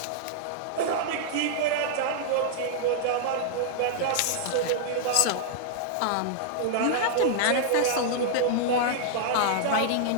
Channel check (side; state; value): both; different; correlation -0.01